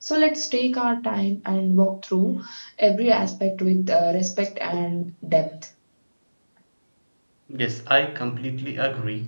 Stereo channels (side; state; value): both; inverted; correlation -1.00